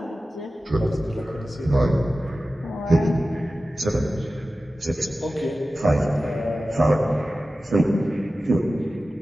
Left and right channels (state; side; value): normal; both; correlation 0.95